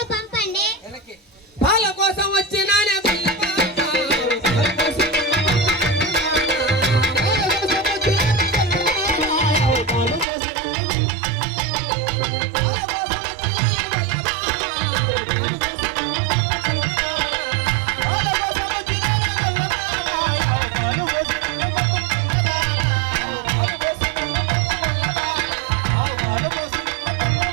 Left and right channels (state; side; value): drops out; left; at 10.2 s